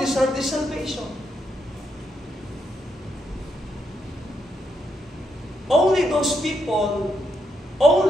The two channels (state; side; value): normal; both; correlation 0.79